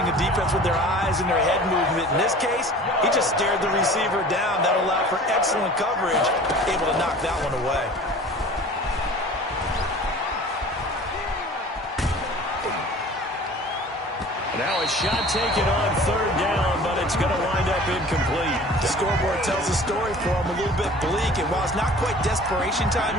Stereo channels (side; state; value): both; normal; correlation 0.44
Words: the defense with their eyes and their head movement. In this case, he just stared the receiver down. That allowed for excellent coverage, able to knock that one away. Now a shot taken on third down, but it's going to wind up incomplete. The scoreboard tells a story for him, a little bit bleak, and while it's not quite desperation time